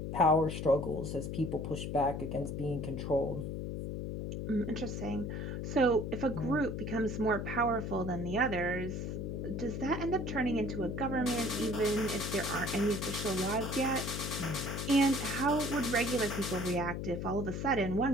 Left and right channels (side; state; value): left; noise; hum, 4 dB below the sound